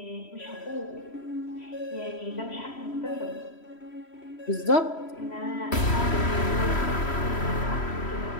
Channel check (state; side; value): late; right; 3.1 ms